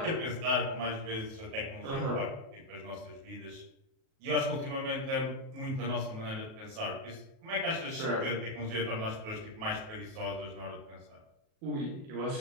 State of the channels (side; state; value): left; late; 37 ms